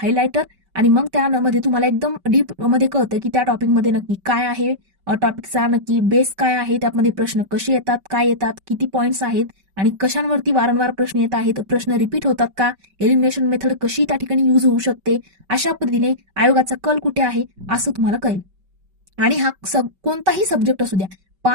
आणि मग त्यामध्ये तुम्हाला एकदम डीप मध्ये कळतं की त्या टॉपिकमध्ये नक्की काय आहे, टॉपिकचा नक्की बेस काय आहे, त्यामध्ये प्रश्न कसे येतात, काय येतात, किती पॉईंट्स आहेत आणि कशांवरती वारंवार प्रश्न येत आहेत, प्रश्न रिपीट होतात का, एलिमिनेशन मेथड कशी त्या ठिकाणी यूज होऊ शकते, अशा पद्धतीने आयोगाचा कल कुठे आहे असं तुम्हाला कळेल. आणि हा कोणताही सब्जेक्ट असू द्या,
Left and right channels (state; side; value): late; left; 5.2 ms